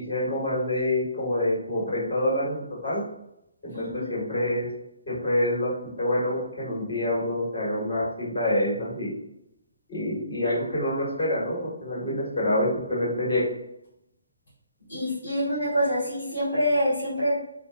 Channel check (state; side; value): inverted; both; correlation -0.65